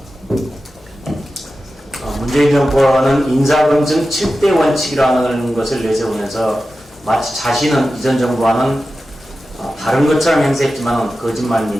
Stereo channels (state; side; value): normal; both; correlation 0.93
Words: 문재인 정부는 인사검증 7대 원칙이라는 것을 내세우면서 마치 자신은 이전 정부와는 다른 것처럼 행세했지만 거짓말